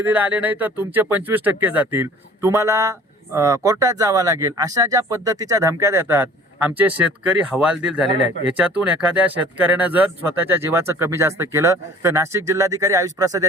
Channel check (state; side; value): normal; both; correlation 0.49